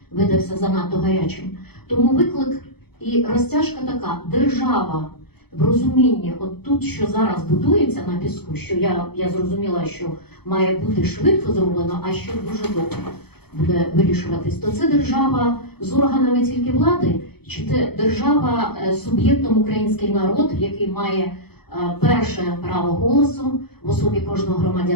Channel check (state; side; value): late; right; 0.96 ms